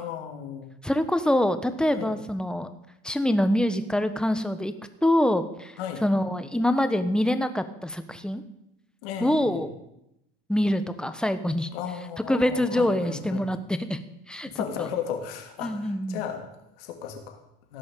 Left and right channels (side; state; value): both; normal; correlation 0.87